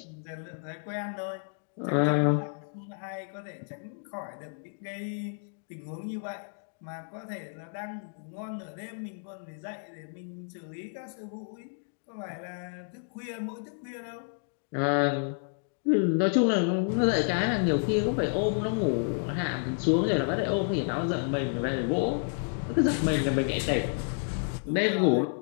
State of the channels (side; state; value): right; silent; digital silence